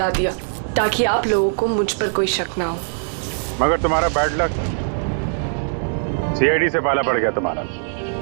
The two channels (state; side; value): silent; left; 59 dB below the other